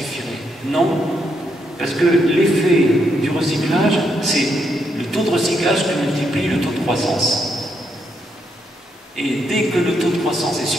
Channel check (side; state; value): both; normal; correlation 0.78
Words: Non, parce que l'effet du recyclage, c'est le taux de recyclage qui multiplie le taux de croissance. Et dès que le taux de croissance est